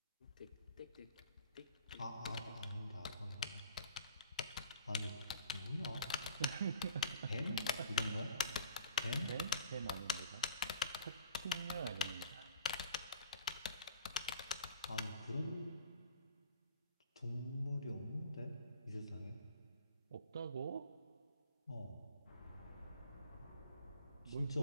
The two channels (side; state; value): both; inverted; correlation -0.47